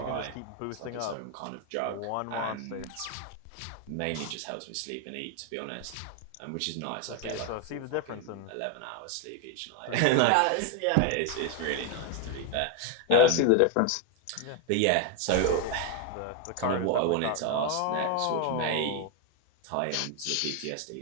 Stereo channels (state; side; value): different; both; correlation 0.01